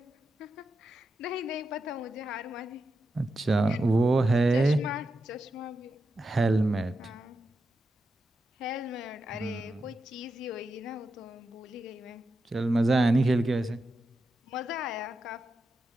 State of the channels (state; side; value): normal; both; correlation 0.87